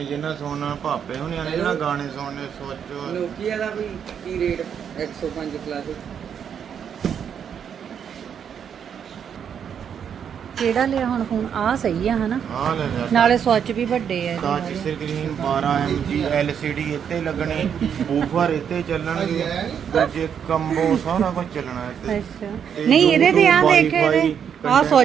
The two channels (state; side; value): quieter; left; 8.0 dB